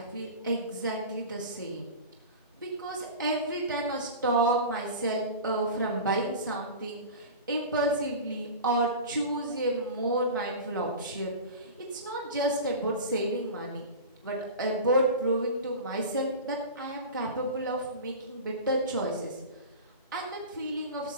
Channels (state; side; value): inverted; both; correlation -0.31